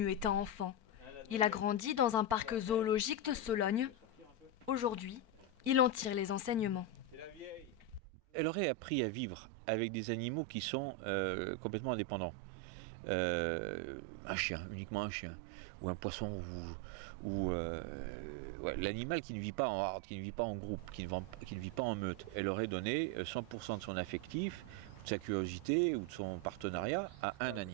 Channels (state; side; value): late; left; 4.4 ms